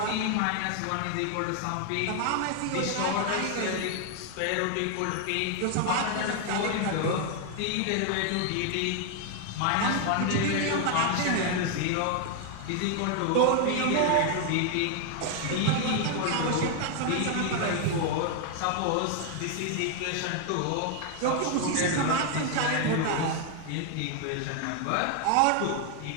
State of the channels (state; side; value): different; both; correlation 0.00